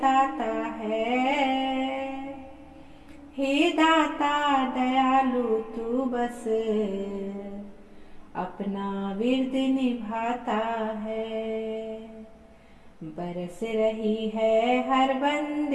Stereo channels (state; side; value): identical; both; correlation 1.00